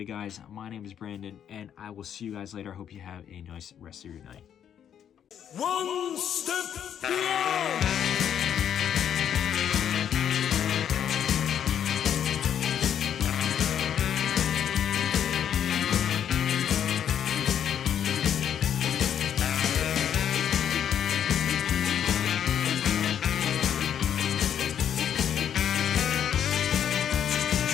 guys, my name is Brandon, and I will see you guys later. I hope you have a nice rest of your night. One step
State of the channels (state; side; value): quieter; right; 9.2 dB